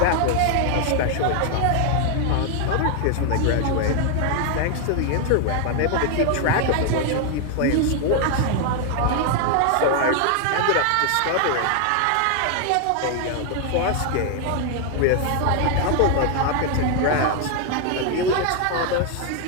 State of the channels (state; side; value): different; both; correlation 0.00